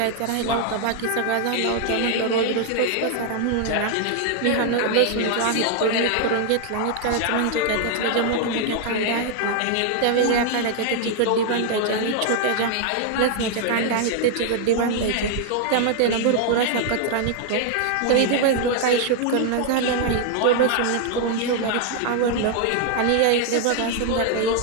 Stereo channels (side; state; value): both; different; correlation 0.00